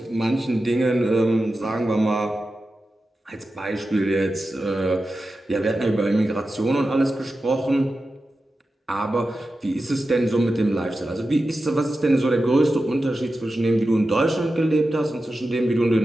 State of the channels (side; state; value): both; normal; correlation 0.92